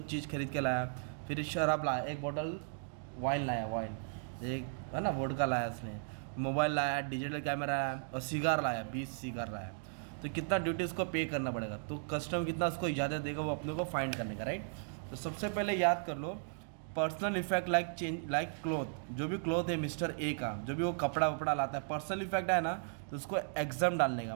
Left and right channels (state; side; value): silent; left; digital silence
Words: चीज़ खरीद के लाया। फिर शराब लाया, एक बोतल वाइन लाया, वाइन एक है ना, वोडका लाया उसने। मोबाइल लाया, डिजिटल कैमरा लाया और सिगार लाया, 20 सिगार लाया। तो कितना ड्यूटी उसको पे करना पड़ेगा, तो कस्टम कितना उसको इजाज़त देगा वो अपने को फाइंड करने का, राइट। तो सबसे पहले याद कर लो, personal effect like change, like cloth, जो भी क्लोथ है मिस्टर ए का, जो भी वो कपड़ा वपड़ा लाता है, पर्सनल इफेक्ट है ना, तो उसको एग्जाम डालने का,